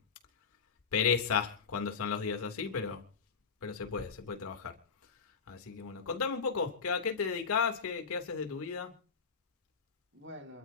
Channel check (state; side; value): quieter; right; 5.7 dB